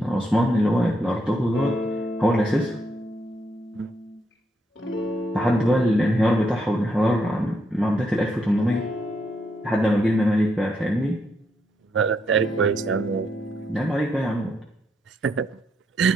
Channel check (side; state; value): both; normal; correlation 0.78